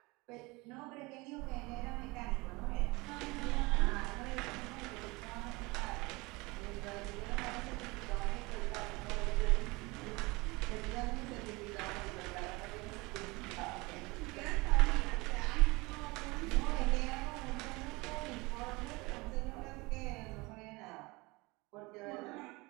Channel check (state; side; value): quieter; left; 24.1 dB